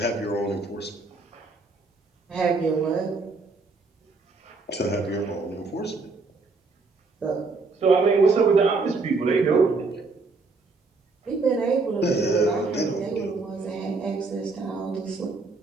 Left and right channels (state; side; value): quieter; left; 3.9 dB